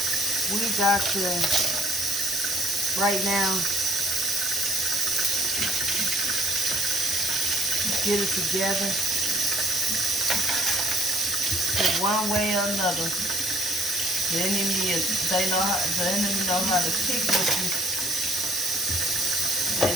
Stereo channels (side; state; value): both; normal; correlation 0.56